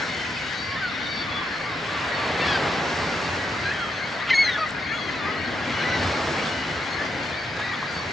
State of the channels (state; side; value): normal; both; correlation 0.80